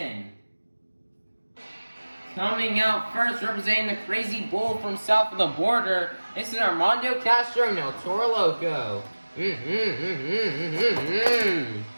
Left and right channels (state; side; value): inverted; both; correlation -1.00